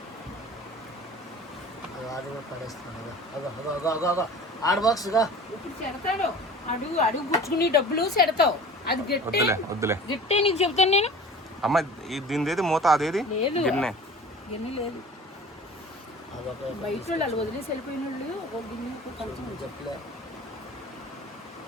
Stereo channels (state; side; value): normal; both; correlation 0.41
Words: పడేస్తున్నాడు. ఆడ బాక్స్గా ఇప్పుడు చెడతాడు. అడుగు గుచ్చుకుని డబ్బులు చెడతావు. అది గట్టే నీకు చెప్తాను నేను. అమ్మ దీనిది ఏది మూత, అదేది లేదు గిన్నె? గిన్నె లేదు. అదొక బయట వాళ్ళు వాళ్ళు వదిలేసి వెళ్ళిపోయిన వాళ్ళు ఒక గిన్నె ఒక కంచం ఉంచారు. చెప్పలే.